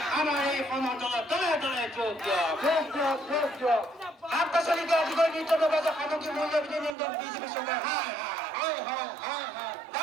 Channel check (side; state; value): left; drops out; at 7.0 s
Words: আমার এই ক্ষমতা দলে দলে যোগ শাক-পাচলিক অধিকার নির্যাতন সামগ্রী মূল্য নিয়ন্ত্রণ বিজেপি সরকার